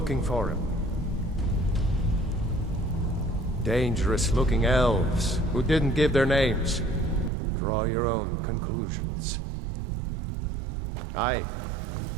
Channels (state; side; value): drops out; left; at 7.3 s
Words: for him. Dangerous-looking elves who didn't give their names. Draw your own conclusions. Aye.